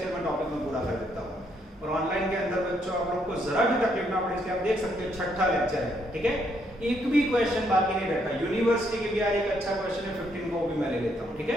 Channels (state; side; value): normal; both; correlation 0.73